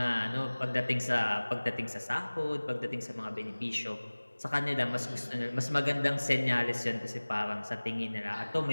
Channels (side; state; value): both; inverted; correlation -1.00